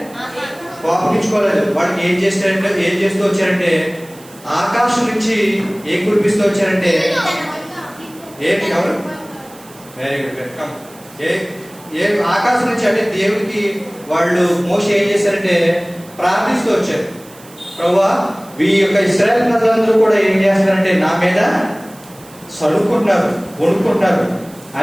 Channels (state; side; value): noise; right; hiss, 23 dB below the sound